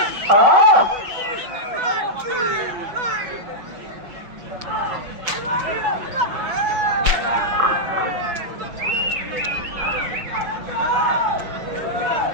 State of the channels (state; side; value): late; left; 5.8 ms